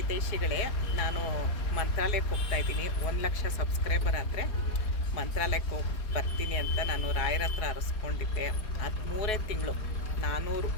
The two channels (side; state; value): right; late; 4.7 ms